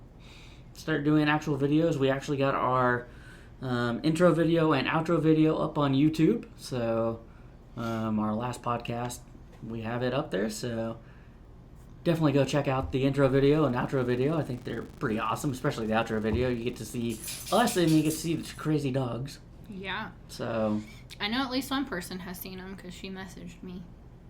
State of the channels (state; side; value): identical; both; correlation 1.00